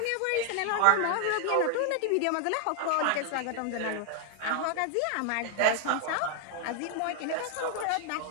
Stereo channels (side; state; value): both; different; correlation 0.00